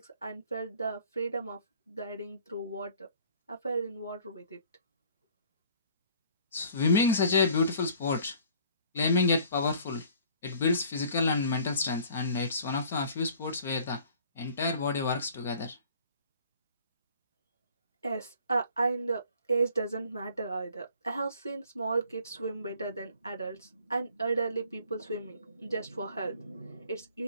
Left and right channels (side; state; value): both; inverted; correlation -0.53